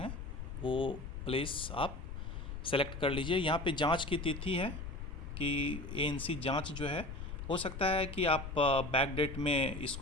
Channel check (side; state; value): left; noise; rumble, 7 dB below the sound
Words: वो प्लेस आप सेलेक्ट कर लीजिए। यहाँ पे जांच की तिथि है कि एएनसी जांच जो है, हो सकता है कि आप बैक डेट में